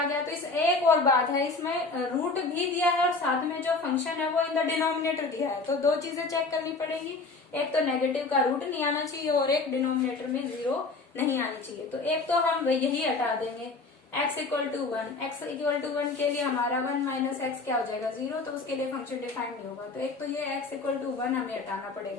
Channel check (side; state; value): right; quieter; 3.7 dB